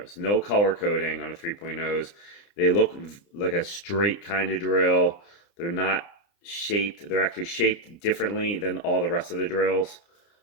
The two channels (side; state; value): right; late; 29 ms